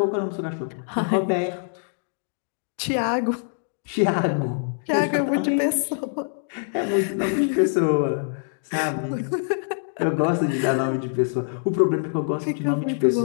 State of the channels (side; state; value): right; silent; digital silence